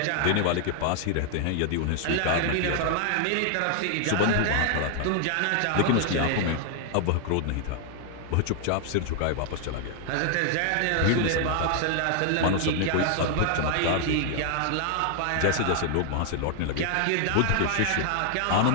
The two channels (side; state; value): both; different; correlation 0.00